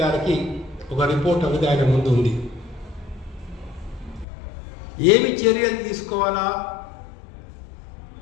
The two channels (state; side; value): drops out; right; at 4.2 s